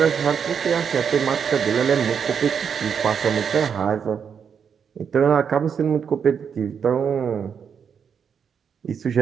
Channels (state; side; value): quieter; left; 7.1 dB